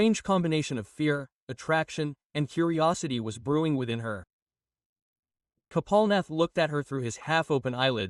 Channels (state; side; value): identical; both; correlation 1.00